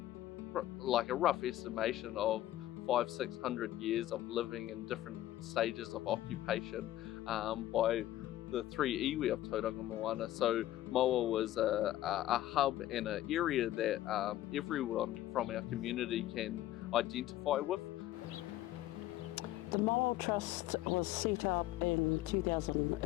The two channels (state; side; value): quieter; right; 14.3 dB